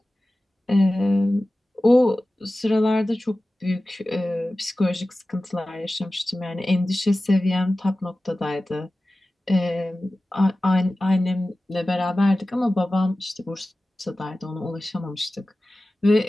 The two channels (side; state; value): both; normal; correlation 0.96